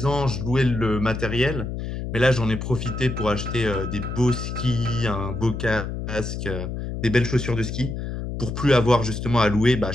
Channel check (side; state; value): left; noise; hum, 5 dB below the sound